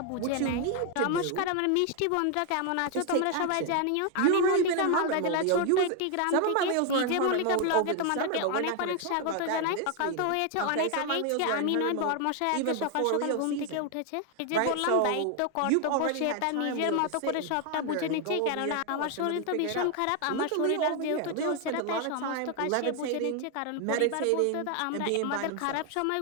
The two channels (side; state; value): both; different; correlation 0.01